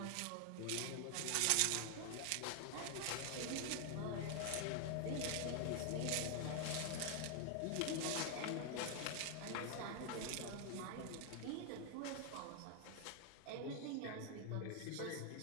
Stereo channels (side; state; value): both; different; correlation 0.00